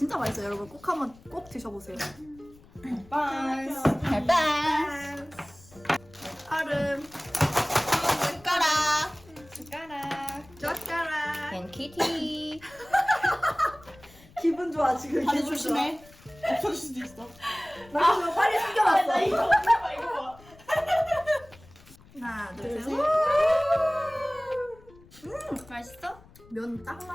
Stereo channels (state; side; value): noise; left; rumble, 24 dB below the sound